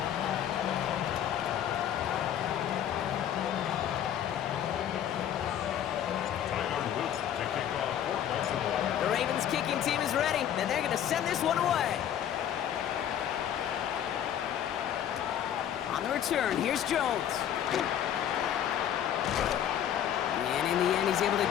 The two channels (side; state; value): right; quieter; 10.1 dB